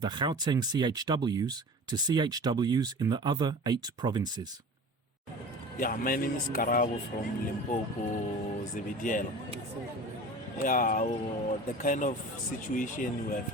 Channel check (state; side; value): normal; both; correlation 0.38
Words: the Gauteng CHWs to CHWs in the other 8 provinces. Yeah, my name is Karabo from Limpopo, Zevidiel. Yeah, the kind of situation we are